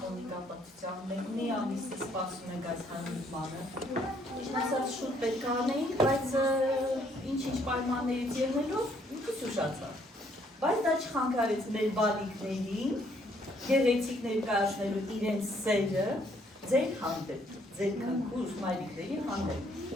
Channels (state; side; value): normal; both; correlation 0.67